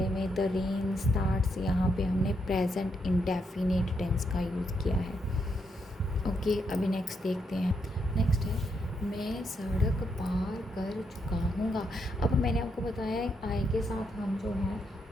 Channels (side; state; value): both; normal; correlation 0.79